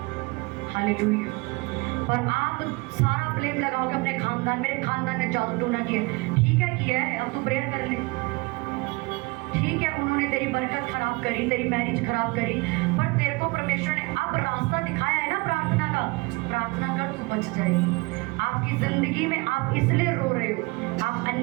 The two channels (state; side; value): quieter; left; 26.1 dB